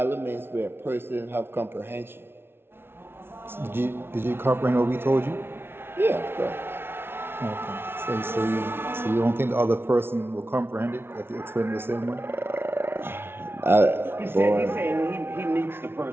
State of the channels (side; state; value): left; late; 0.11 ms